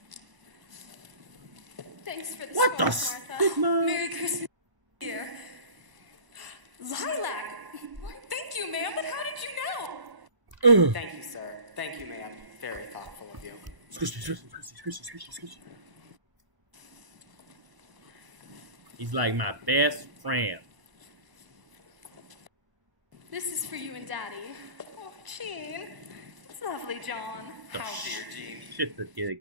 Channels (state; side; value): late; left; 1.0 ms